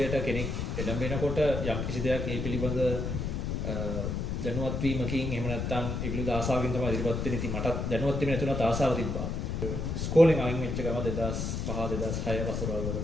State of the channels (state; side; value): noise; left; rumble, 2 dB below the sound